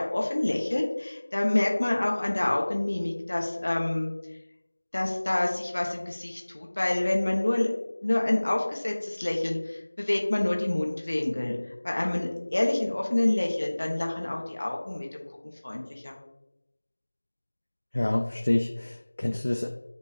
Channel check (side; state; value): both; inverted; correlation -1.00